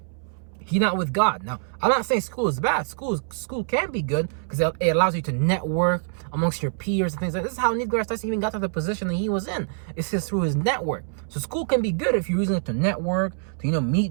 he not with God. Now, I'm not saying school is bad. School can be good because it allows you to network amongst your peers and things like that. This is how Neil deGrasse Tyson even got to the position that he was in. It's just through his network. So school can be good if you're using it to network, to, meet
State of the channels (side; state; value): left; silent; 62 dB below the other